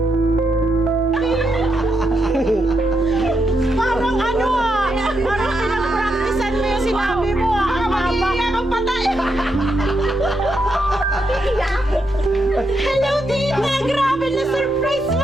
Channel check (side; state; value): both; normal; correlation 0.81